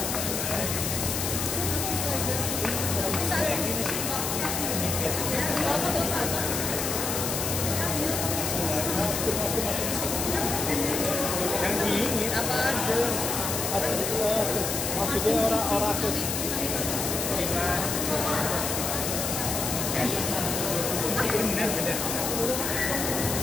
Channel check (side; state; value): left; noise; hiss, 2 dB below the sound